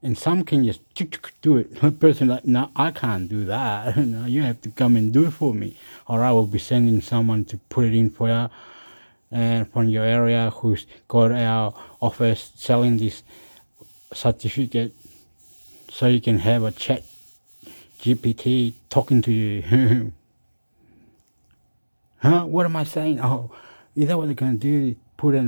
And some can just do it. A person like, no, I can't do that. No, you have to come and do it for me. Or I will be sending someone to put it in for you and from your area who's got our office selling this certificate so you can have a chat GPT talking to you. Huh? What am I saying? Oh, is that what they're going to do? Put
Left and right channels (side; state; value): both; inverted; correlation -1.00